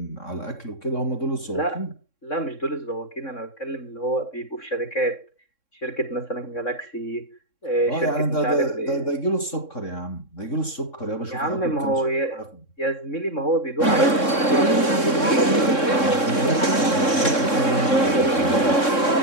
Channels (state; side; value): late; right; 3.6 ms